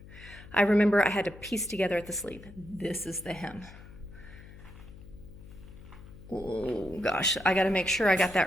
I remember I had to piece together at the sleeve. This is the hem. Oh gosh, I gotta make sure I got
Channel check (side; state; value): left; noise; hum, 18 dB below the sound